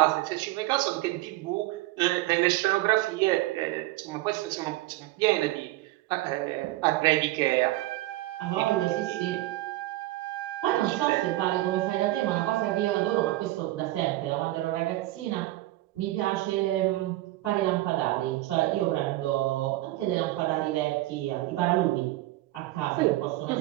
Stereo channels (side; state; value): left; quieter; 17.5 dB